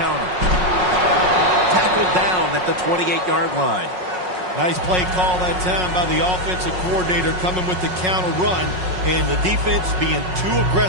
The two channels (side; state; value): left; late; 5.5 ms